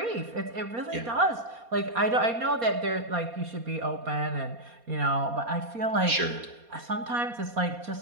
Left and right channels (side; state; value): left; late; 4.2 ms